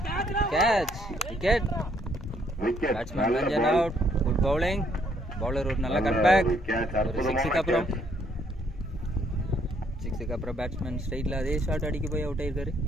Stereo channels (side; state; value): both; normal; correlation 0.68